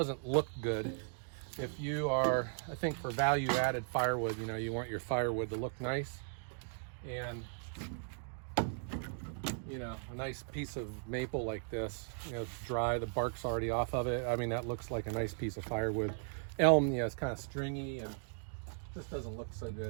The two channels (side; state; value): left; silent; digital silence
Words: look good. If you are, I think for value-added firewood, you want your firewood to look nice. And, a nice piece of maple like this, it's dry, the bark's already off of it. I mean, that looks like a nice piece of firewood. Elm, it's kind of stringy and just doesn't look so